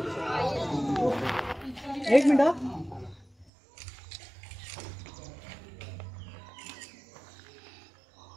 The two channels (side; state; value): left; drops out; at 3.5 s